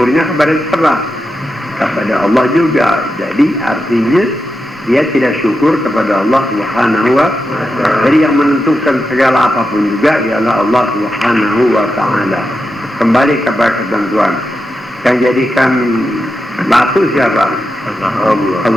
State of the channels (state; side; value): normal; both; correlation 0.88